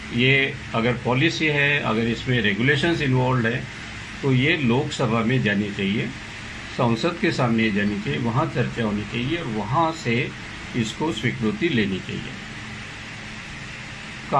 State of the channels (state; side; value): identical; both; correlation 1.00